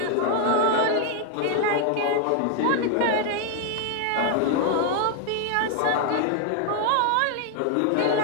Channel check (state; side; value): different; both; correlation 0.00